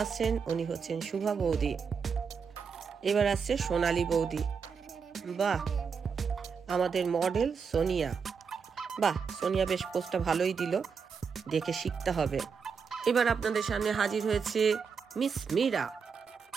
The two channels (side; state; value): left; quieter; 6.0 dB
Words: আসছেন উনি হচ্ছেন শুভা বৌদি। এবার আসছে সোনালী বৌদি, বাহ আমাদের মডেল সোনিয়া, বাহ সোনিয়া বেশ পোস্টটা ভালোই দিল, দেখে শিখতে হবে। এবার আপনাদের সামনে হাজির হয়েছে মিস মীরা।